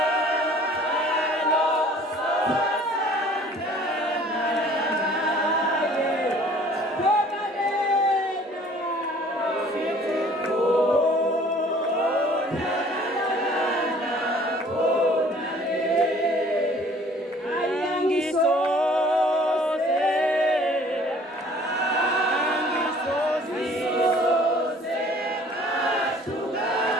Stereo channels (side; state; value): both; normal; correlation 0.53